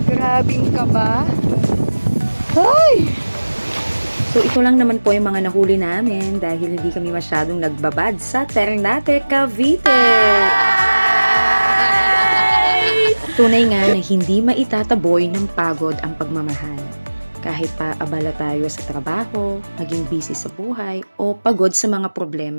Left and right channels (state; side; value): inverted; both; correlation -1.00